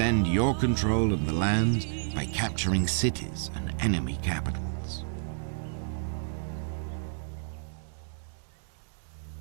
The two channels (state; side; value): silent; left; digital silence